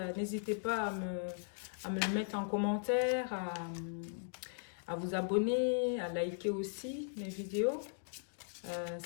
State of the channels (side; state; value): right; silent; digital silence